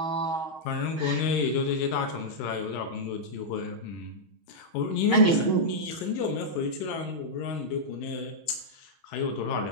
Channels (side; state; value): right; late; 6.3 ms